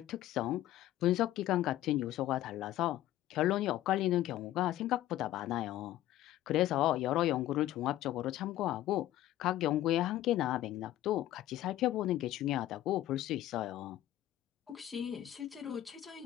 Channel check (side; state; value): right; quieter; 13.9 dB